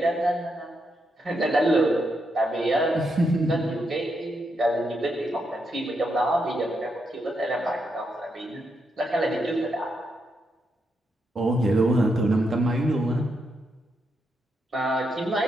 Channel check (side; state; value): both; normal; correlation 0.81